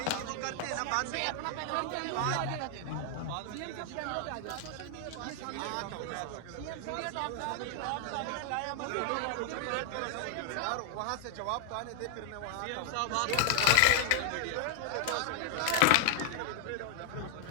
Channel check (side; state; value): both; different; correlation 0.00